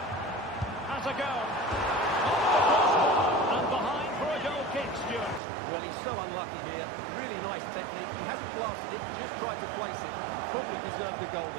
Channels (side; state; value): left; drops out; at 5.4 s